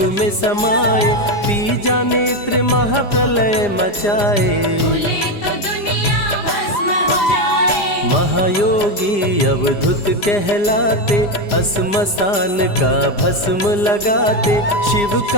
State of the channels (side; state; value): right; late; 4.9 ms